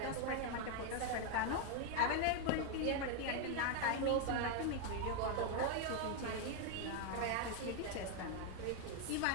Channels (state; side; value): different; both; correlation 0.01